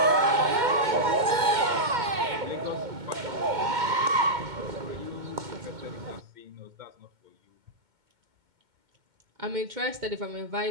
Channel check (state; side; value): late; left; 2.2 ms